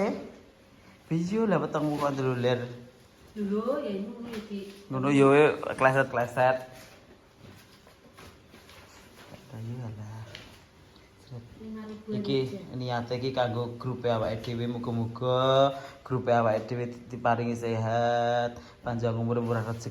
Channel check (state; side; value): identical; both; correlation 1.00